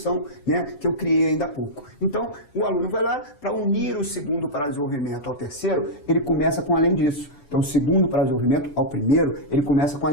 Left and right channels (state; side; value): late; right; 7.0 ms